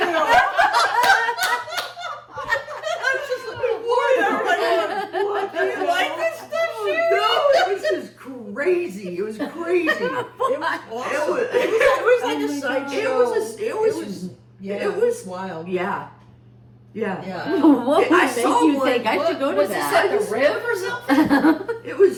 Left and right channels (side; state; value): both; identical; correlation 1.00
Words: I was just looking forward. Everybody going, "What? Do you like this stuff, Sherri?" No, it was just crazy. It was crazy. It was awesome. was- It was like a sideshow. It was wild. Yeah. Yeah. What I would make saw you one. think I should go to Was this that? at the Riv or something? It